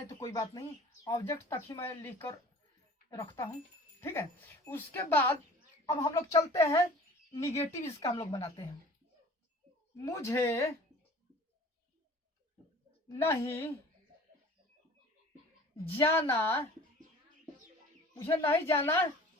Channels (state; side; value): normal; both; correlation 0.46